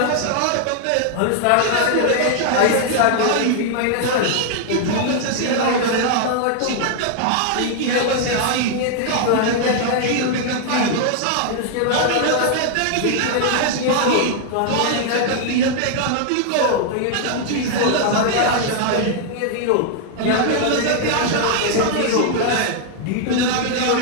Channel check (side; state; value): both; different; correlation 0.00